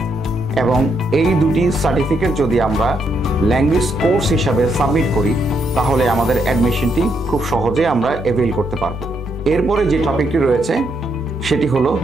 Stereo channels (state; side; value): normal; both; correlation 0.77